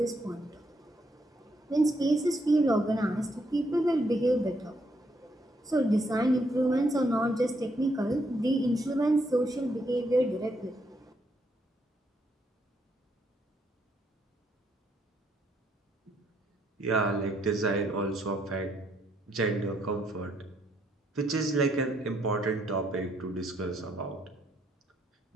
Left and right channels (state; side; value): normal; both; correlation 0.74